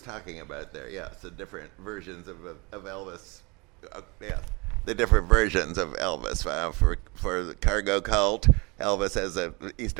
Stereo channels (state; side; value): quieter; left; 27.7 dB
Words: talking about there. Yeah, so different versions of Elvis. Yeah, the different versions of Elvis. For the cargo cult, Elvis as a